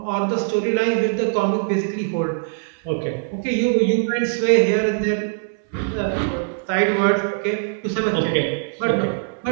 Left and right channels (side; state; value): left; silent; digital silence